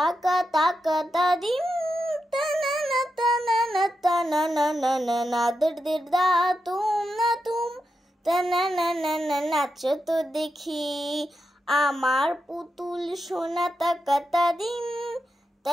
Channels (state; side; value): normal; both; correlation 0.87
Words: তাকা তাদিম তানানা তানানা তানানা নাদির দিরদা তুম তানানা নাচো তো দেখি আমার পুতুল সোনা তাকা তাদিম